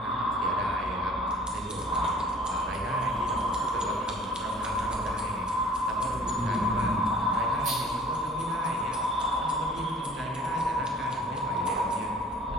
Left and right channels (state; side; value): normal; both; correlation 0.51